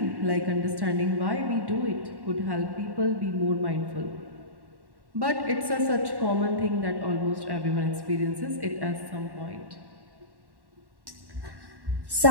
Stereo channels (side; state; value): left; late; 1.1 ms